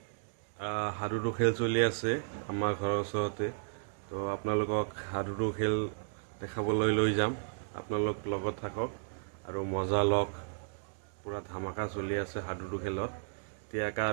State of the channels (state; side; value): silent; left; digital silence